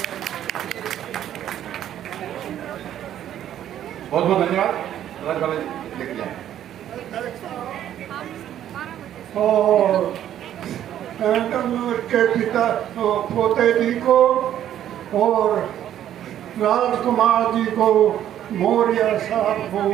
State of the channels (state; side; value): quieter; left; 11.1 dB